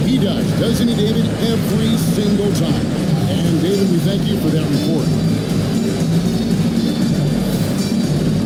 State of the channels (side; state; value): both; identical; correlation 1.00